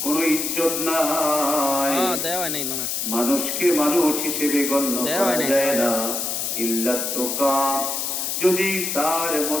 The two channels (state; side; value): noise; left; hiss, 2 dB below the sound